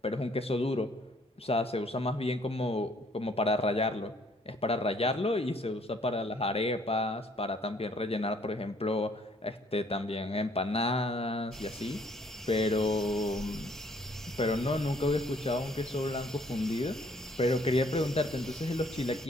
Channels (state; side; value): normal; both; correlation 0.63